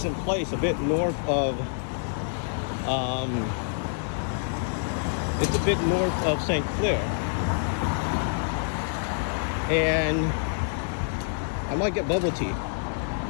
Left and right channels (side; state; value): right; silent; 60 dB below the other